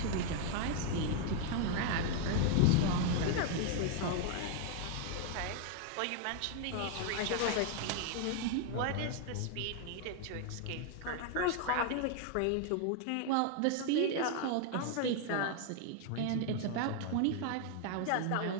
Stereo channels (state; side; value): different; both; correlation 0.00